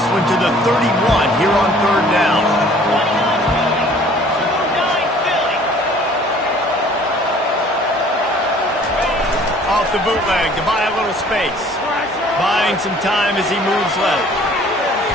one to the 31 here on third down. Off the bootleg to buy a little space. Buying some time as he moves left.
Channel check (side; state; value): both; normal; correlation 0.54